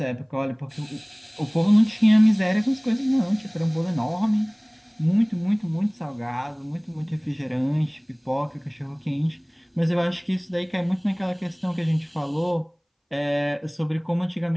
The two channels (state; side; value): identical; both; correlation 1.00